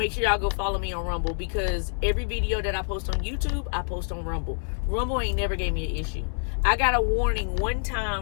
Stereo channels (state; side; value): silent; right; 60 dB below the other